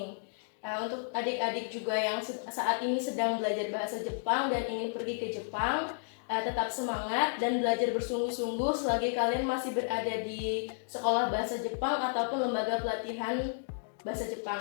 Untuk adik-adik juga yang saat ini sedang belajar bahasa Jepang dan ingin pergi ke Jepang, tetap semangat dan belajar bersungguh-sungguh selagi kalian masih berada di sekolah bahasa Jepang ataupun lembaga pelatihan bahasa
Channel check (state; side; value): silent; right; digital silence